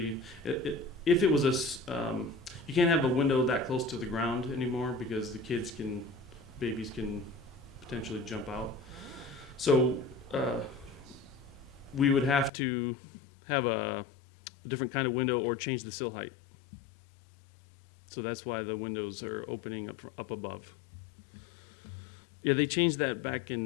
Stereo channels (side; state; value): right; drops out; at 12.5 s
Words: if it was you can't have a window that close to the ground anymore because the babies can potentially jump out. So we would have to have a different kind of window or change the sill height. So that's why the windows are opening up above. Yeah, they changed that back